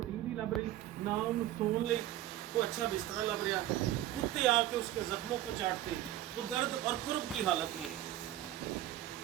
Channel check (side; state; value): left; quieter; 13.7 dB